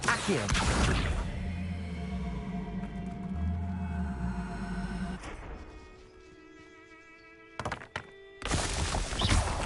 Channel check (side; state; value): both; identical; correlation 1.00